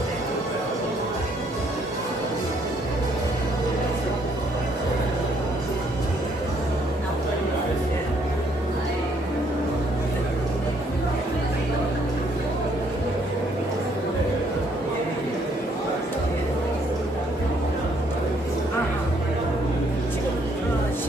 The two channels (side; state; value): both; normal; correlation 0.67